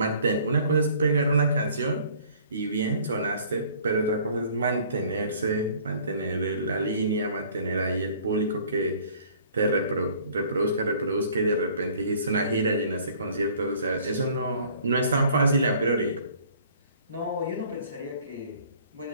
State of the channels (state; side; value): inverted; both; correlation -0.54